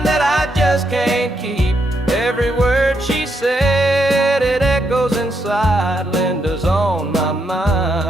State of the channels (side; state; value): both; normal; correlation 0.79